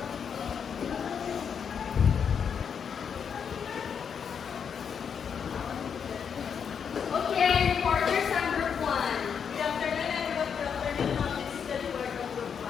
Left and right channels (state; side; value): quieter; right; 7.1 dB